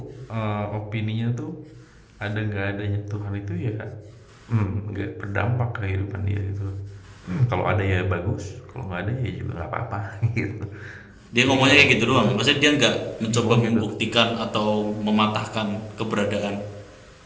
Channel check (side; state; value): both; identical; correlation 1.00